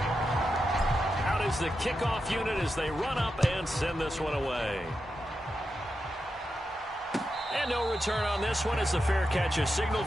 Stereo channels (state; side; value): normal; both; correlation 0.88